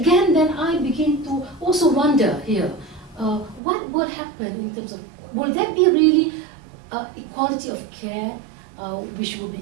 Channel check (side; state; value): left; drops out; at 3.6 s